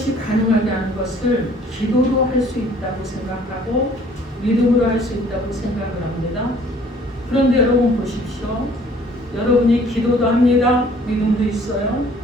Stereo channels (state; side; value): normal; both; correlation 0.56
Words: 가능하게 하는 것을 기도로 할 수 있다고 생각하고 믿음으로 할 수 있다고 생각을 합니다. 그런데 여러분 보십시오. 여러분이 기도도 합니다. 믿음도 있어요.